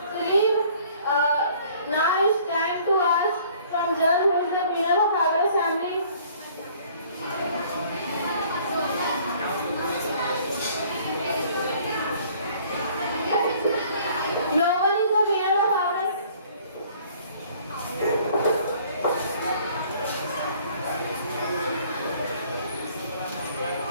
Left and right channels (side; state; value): both; inverted; correlation -0.56